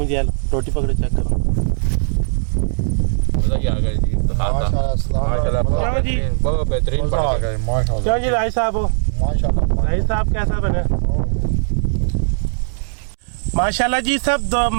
जान रोटी पकड़ो चेक करो। बहुत बेहतरीन क्यों जी राय साहब हो? राय साहब कैसा बने? माशाल्लाह जी सब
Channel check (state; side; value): silent; left; digital silence